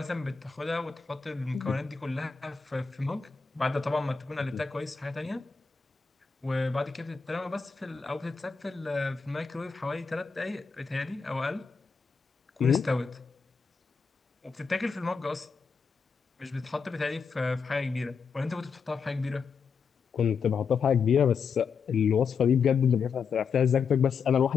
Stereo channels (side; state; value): right; quieter; 5.6 dB